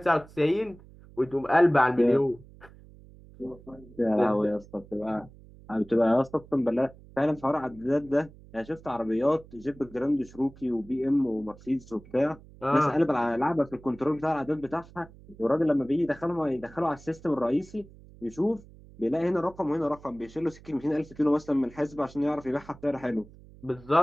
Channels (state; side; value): noise; right; hum, 22 dB below the sound